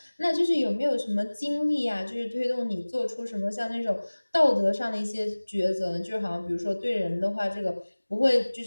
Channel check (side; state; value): both; inverted; correlation -1.00